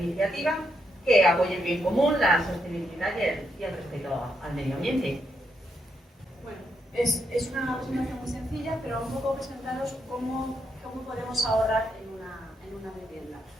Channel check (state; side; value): normal; both; correlation 0.79